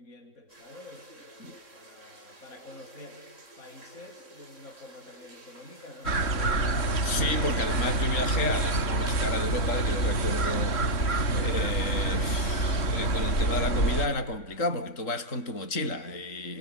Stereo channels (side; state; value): right; late; 3.6 ms